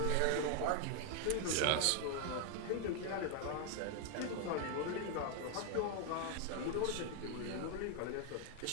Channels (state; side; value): different; both; correlation 0.01